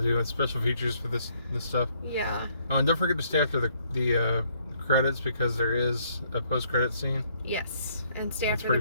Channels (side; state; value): both; inverted; correlation -0.67